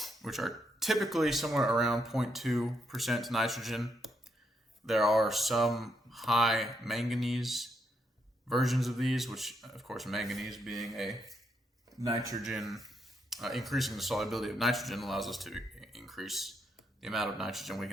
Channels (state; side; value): normal; both; correlation 0.78